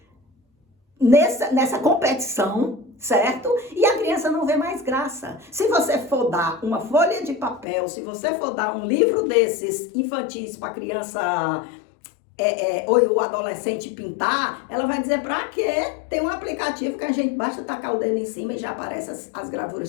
nessa competição, certo? E a criança não vê mais graça. Se você for dar uma folha de papel, se você for dar um livro desses infantis para a criança ou o adolescente pintar, ela vai dizer, pra quê? Tem um aplicativo que a gente basta tacar o dedo em cima e já aparecem as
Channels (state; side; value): drops out; right; at 7.7 s